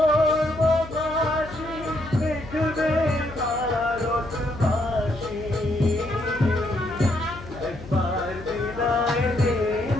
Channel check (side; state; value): left; noise; hum, 15 dB below the sound